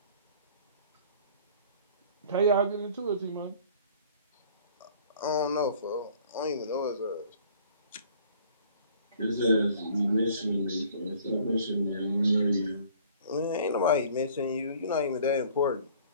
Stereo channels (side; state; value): both; inverted; correlation -0.53